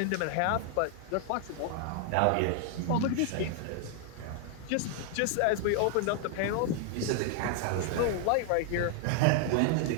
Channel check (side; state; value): both; different; correlation 0.00